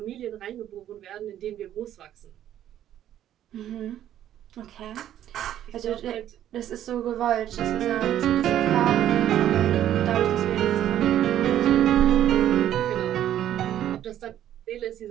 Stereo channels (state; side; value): quieter; left; 11.5 dB